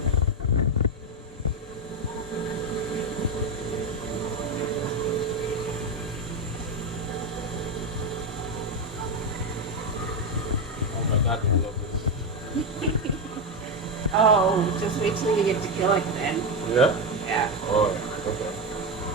Oh my God, I love this. Oh, just wait till you get to kill it then. Yeah? Yeah. Oh, okay.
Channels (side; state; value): both; normal; correlation 0.10